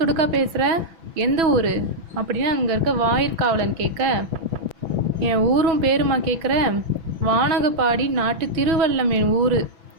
துடுக்கா பேசுகிற? எந்த ஊர் அப்படின்னு அங்கே இருக்க வாயிற்காவலன் கேட்க, என் ஊரும் பேருமா கேட்குற? வானகப்பாடி நாட்டு திருவல்லம் என் ஊர்.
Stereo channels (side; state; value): left; late; 6.1 ms